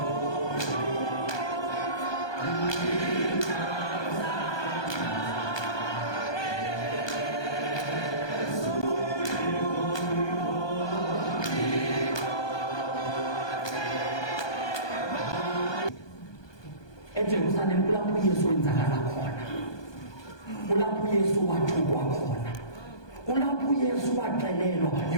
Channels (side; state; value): right; late; 1.2 ms